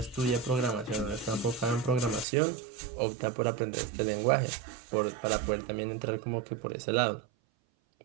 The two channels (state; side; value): drops out; left; at 2.2 s